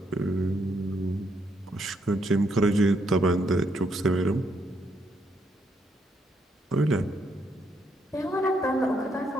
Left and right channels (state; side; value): normal; both; correlation 0.75